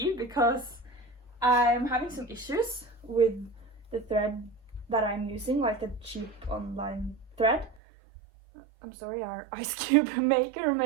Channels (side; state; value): left; drops out; at 7.8 s